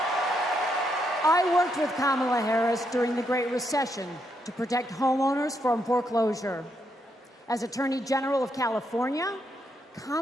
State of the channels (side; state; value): both; normal; correlation 0.78